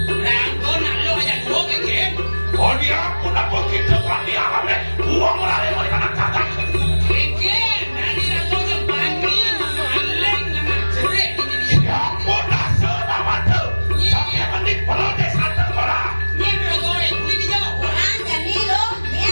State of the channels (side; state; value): both; inverted; correlation -1.00